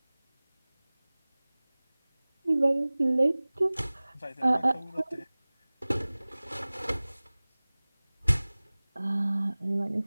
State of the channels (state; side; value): inverted; both; correlation -1.00